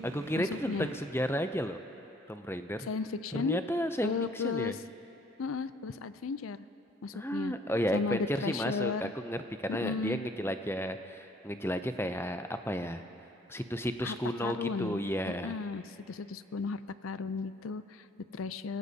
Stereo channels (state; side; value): normal; both; correlation 0.60